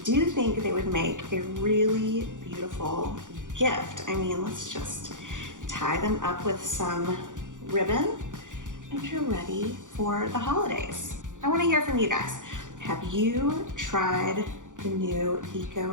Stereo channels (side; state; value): left; late; 0.87 ms